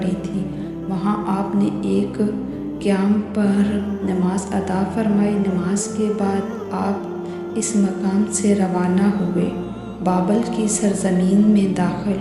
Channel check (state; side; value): identical; both; correlation 1.00